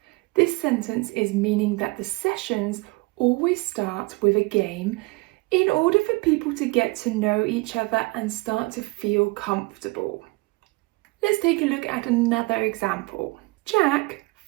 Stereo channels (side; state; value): left; quieter; 25.3 dB